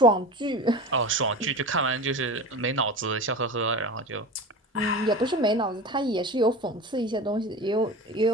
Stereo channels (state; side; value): normal; both; correlation 0.31